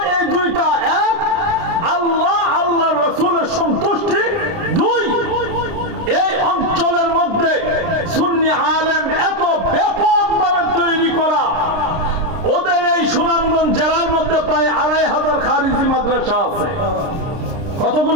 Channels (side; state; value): left; late; 30 ms